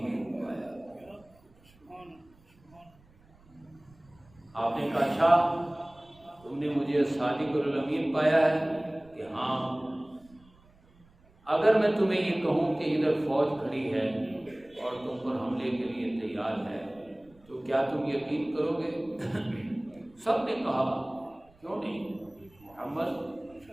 پایا۔ آپ نے کہا اچھا تم نے مجھے صادق اور الامین پایا ہے کہ ہاں، اگر میں تمہیں یہ کہوں کہ ادھر فوج کھڑی ہے اور تم پر حملے کے لیے تیار ہے تو کیا تم یقین کرو گے؟ سب نے کہا کیوں نہیں محمد،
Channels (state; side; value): noise; right; rumble, 29 dB below the sound